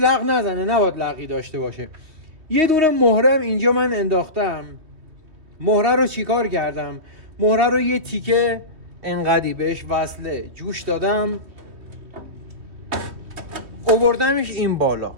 نزنه، نباید لقی داشته باشه. یه دونه مهره هم اینجا من انداختم. مهره رو چیکار کردم؟ مهره رو یه تیکه انقدی بهش وصله جوش دادم، آوردمش این بالا.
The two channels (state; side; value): late; left; 3.4 ms